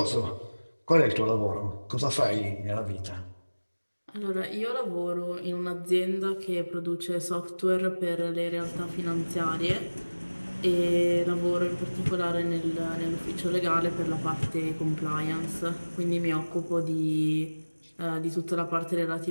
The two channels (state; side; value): inverted; both; correlation -1.00